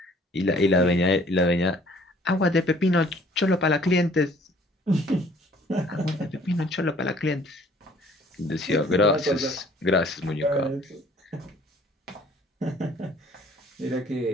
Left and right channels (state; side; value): normal; both; correlation 0.56